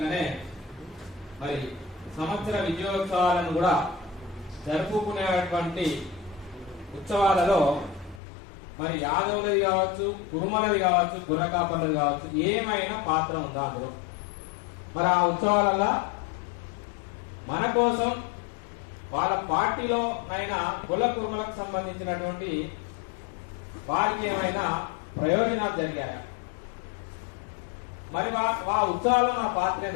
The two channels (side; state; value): right; drops out; at 8.2 s